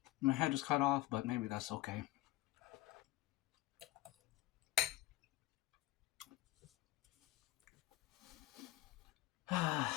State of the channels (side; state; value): right; quieter; 16.5 dB